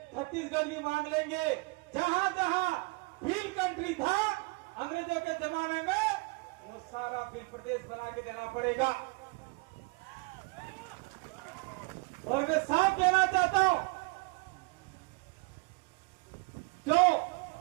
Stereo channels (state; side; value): quieter; left; 27.5 dB